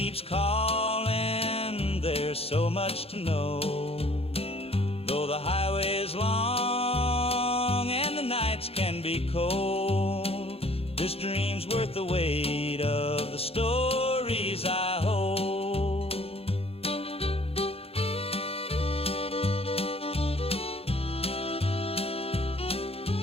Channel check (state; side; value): late; right; 0.28 ms